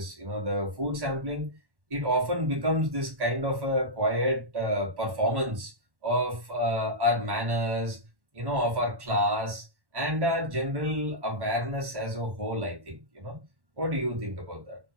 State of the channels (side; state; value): left; late; 1.1 ms